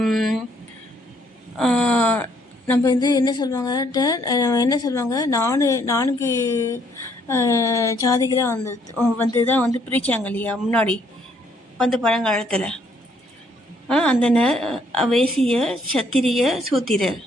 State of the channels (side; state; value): both; normal; correlation 0.67